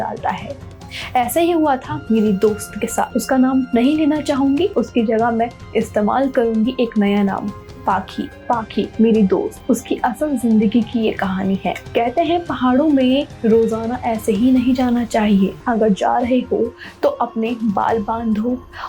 है। ऐसा ही हुआ था मेरी दोस्त के साथ। उसका नाम नहीं लेना चाहूंगी, उसकी जगह मैं इस्तेमाल करूंगी एक नया नाम, पाखी। पाखी मेरी दोस्त, उसकी असल जिंदगी की ये कहानी है। कहते हैं पहाड़ों में रोजाना ऐसे ही नहीं जाना चाहिए। अगर जा रहे हो तो अपने बाल बांधो,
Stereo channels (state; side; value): identical; both; correlation 1.00